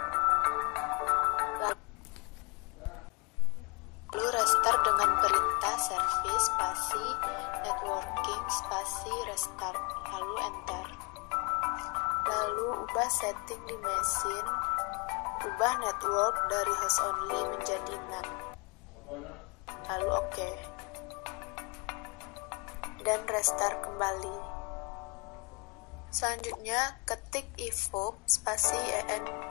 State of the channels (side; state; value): right; quieter; 30.9 dB